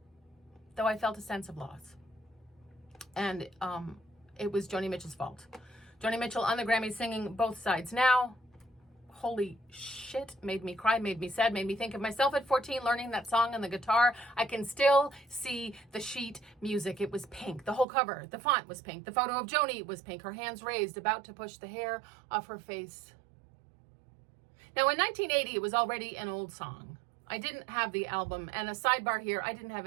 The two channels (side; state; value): left; drops out; at 17.9 s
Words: though I felt a sense of loss. And it was Joni Mitchell's fault. Joni Mitchell on the Grammy singing Both Sides Now. Holy shit, made me cry, made me sad, made me think of myself at 14 learning that song on the guitar. I can still see the sheet music. It was pink. The whole cover, the font was pink. The photo of Joni was pink, her hands raised, about to push the hair off her face. Now in 1980, it was already an old song. I didn't have the album, and a sidebar here, I didn't have